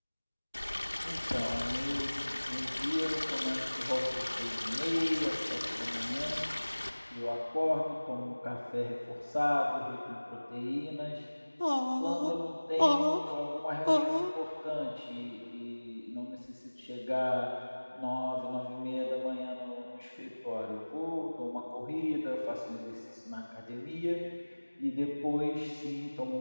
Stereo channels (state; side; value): inverted; both; correlation -1.00